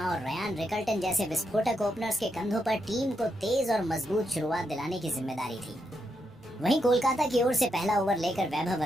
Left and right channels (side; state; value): both; normal; correlation 0.82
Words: और रयान रिकल्टन जैसे विस्फोटक ओपनर्स के कंधों पर टीम को तेज और मजबूत शुरुआत दिलाने की जिम्मेदारी थी। वहीं कोलकाता की ओर से पहला ओवर लेकर वैभव